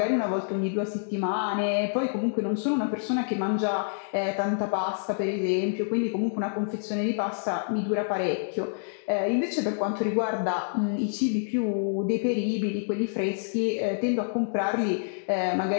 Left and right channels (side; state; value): right; silent; digital silence